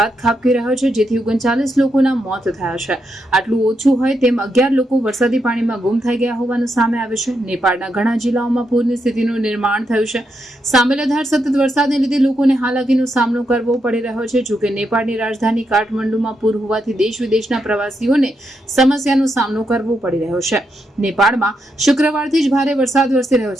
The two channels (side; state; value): both; normal; correlation 0.82